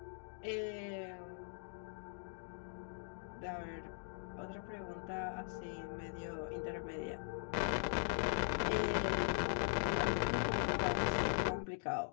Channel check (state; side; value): silent; right; digital silence